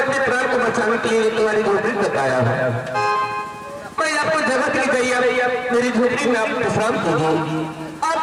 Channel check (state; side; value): identical; both; correlation 1.00